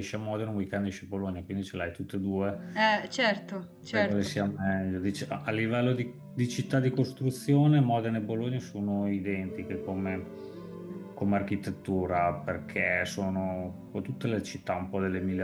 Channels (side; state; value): both; identical; correlation 1.00